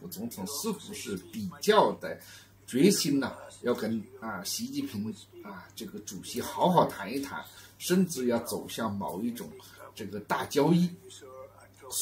总统似乎是比较的决心呢，要跟习近平这个主席好好谈一谈，甚至要走向某一种这个大交易。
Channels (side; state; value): both; identical; correlation 1.00